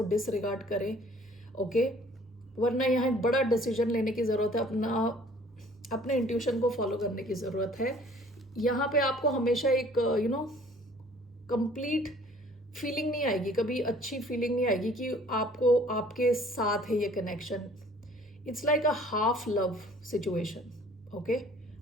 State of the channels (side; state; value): both; normal; correlation 0.54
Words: डिसरिगार्ड करें, ओके। वरना यहाँ एक बड़ा डिसीजन लेने की ज़रूरत है, अपने इंट्यूशन को फॉलो करने की ज़रूरत है। यहाँ पे आपको हमेशा एक कंप्लीट फीलिंग नहीं आएगी, कभी अच्छी फीलिंग नहीं आएगी कि आपको आपके साथ है ये connection. It's like a half love situation. Okay,